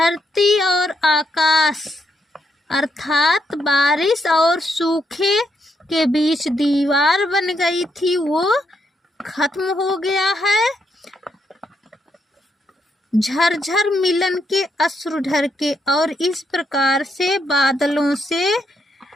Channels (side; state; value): both; normal; correlation 0.78